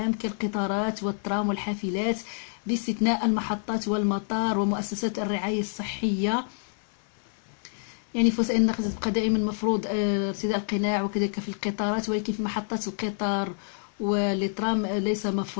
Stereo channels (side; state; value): right; silent; 57 dB below the other